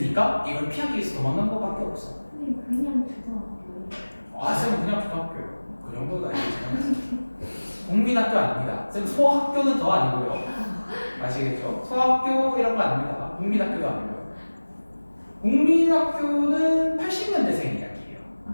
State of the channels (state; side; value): inverted; both; correlation -1.00